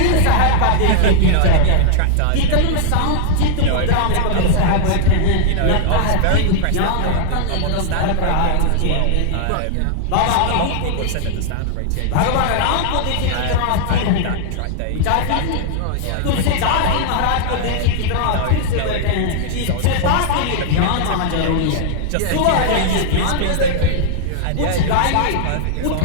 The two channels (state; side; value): different; both; correlation 0.00